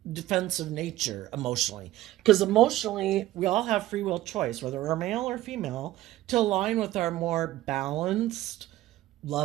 defensive nature emotionally. Because emotionally, we all have free will choice, whether we're male or female, to align with our more balanced,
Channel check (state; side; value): quieter; left; 15.1 dB